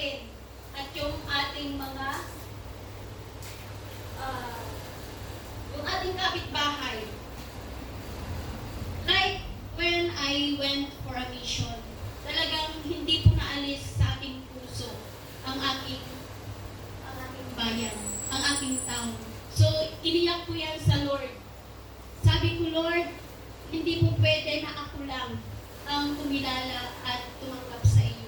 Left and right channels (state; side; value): identical; both; correlation 1.00